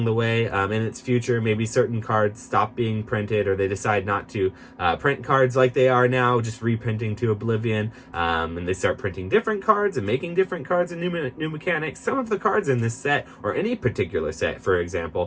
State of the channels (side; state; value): both; identical; correlation 1.00